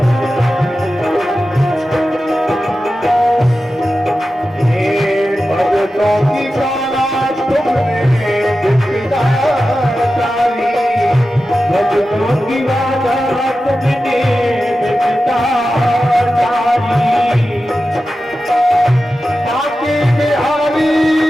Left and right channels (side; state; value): both; normal; correlation 0.93